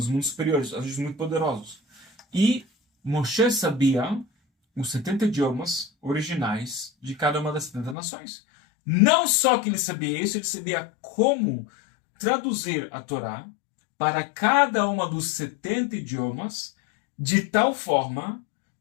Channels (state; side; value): drops out; right; at 8.0 s